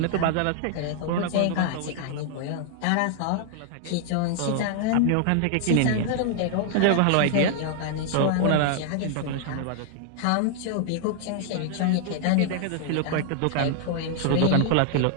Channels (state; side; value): different; both; correlation 0.00